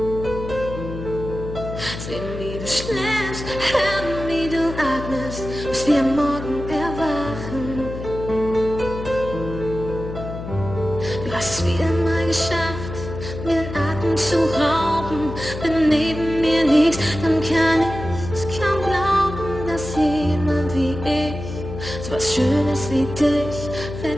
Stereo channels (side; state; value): left; noise; hum, 9 dB below the sound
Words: Sehen, wie du schläfst, hören, wie du atmest, bis wir am Morgen erwachen. Du hast es wieder mal geschafft, mir den Atem zu rauben. Wenn neben mir liegst, dann kann ich es kaum glauben, dass jemand wie ich so was Schönes wie dich